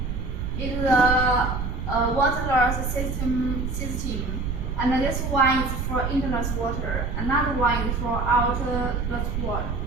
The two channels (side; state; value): right; noise; rumble, 3 dB below the sound